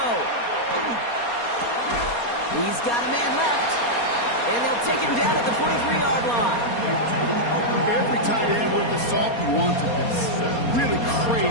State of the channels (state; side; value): late; right; 4.3 ms